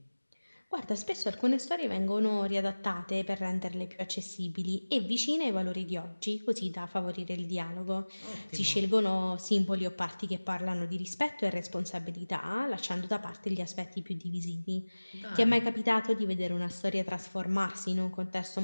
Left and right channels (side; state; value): both; inverted; correlation -1.00